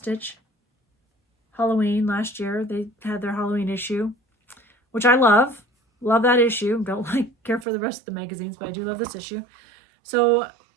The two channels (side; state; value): left; drops out; at 7.7 s